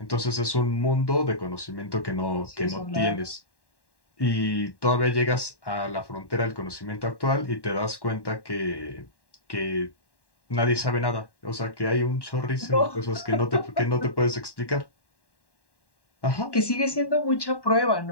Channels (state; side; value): late; right; 1.1 ms